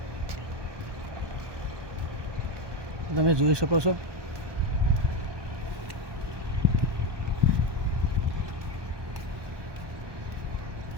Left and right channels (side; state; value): left; late; 1.2 ms